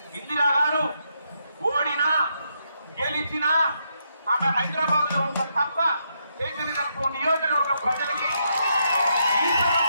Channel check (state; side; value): inverted; both; correlation -0.78